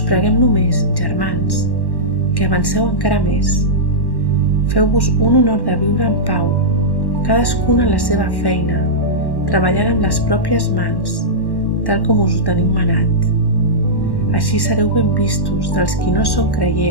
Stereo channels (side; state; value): right; late; 1.1 ms